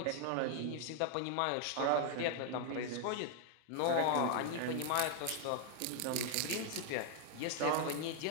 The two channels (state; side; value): different; both; correlation 0.00